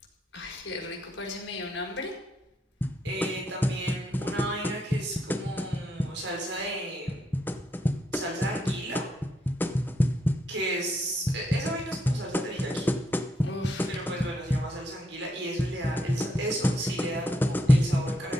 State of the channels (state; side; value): normal; both; correlation 0.77